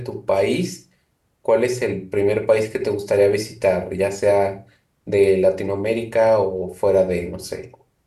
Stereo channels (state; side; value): identical; both; correlation 1.00